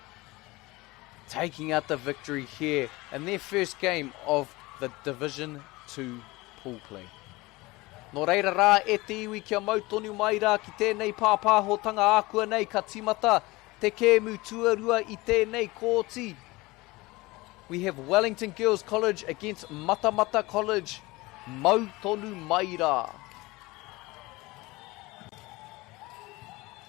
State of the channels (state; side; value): quieter; right; 21.7 dB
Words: Taking out the victory here in their first game of the Division 2 pool play. Nō reira rā e te iwi kia mautonu mai rā ki tēnei pāpāhotanga ākua nei ka timata te kēmu tuarua i tēnei kōti. We have Wellington Girls College against Matamata College. Mautonu mai rā.